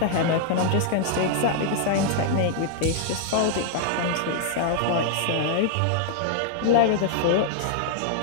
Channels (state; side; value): different; both; correlation -0.01